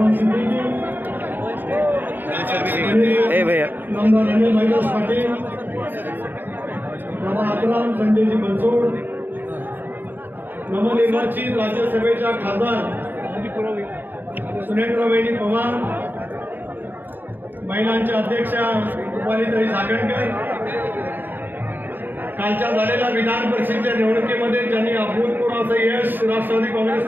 ए भैया संजयजी बनसोड नवनिर्वाचित राज्यसभेच्या खासदार सुनेत्रवहिनी पवार, महिलांच्या अध्यक्षा रुपालीताई सागणकर, कालच्या झालेल्या विधान परिषदेच्या निवडणुकीमध्ये ज्यांनी अभूतपूर्व असं यश राष्ट्रवादी काँग्रेस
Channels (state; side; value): late; left; 0.092 ms